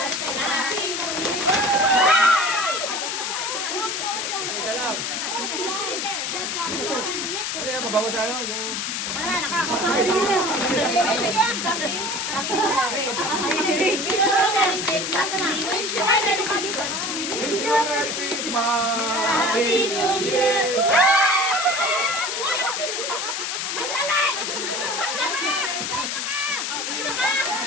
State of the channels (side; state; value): left; noise; hiss, 2 dB below the sound